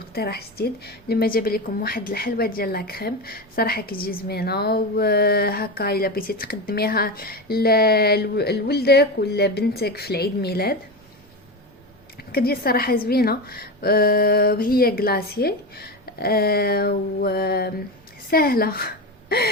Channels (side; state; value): both; normal; correlation 0.20